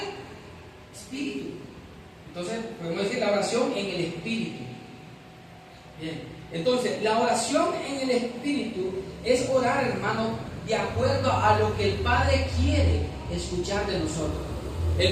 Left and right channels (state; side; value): identical; both; correlation 1.00